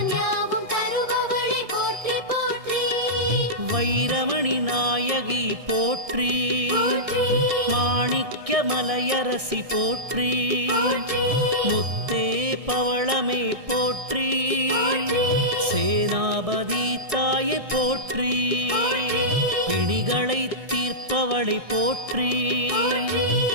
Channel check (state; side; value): late; left; 1.6 ms